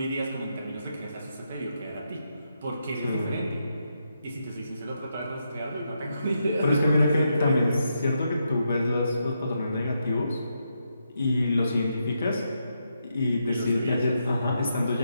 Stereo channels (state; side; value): inverted; both; correlation -0.82